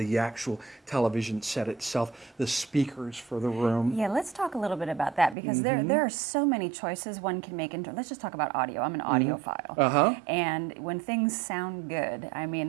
actual television set itself, the speakers for the room. Yeah, let's talk a little bit about that, because there are so many choices one can make. Let's just talk about audio. I'm an audiophile. And when things sound good, I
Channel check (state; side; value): drops out; left; at 5.4 s